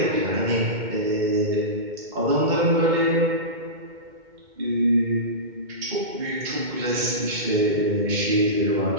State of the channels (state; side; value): late; left; 2.2 ms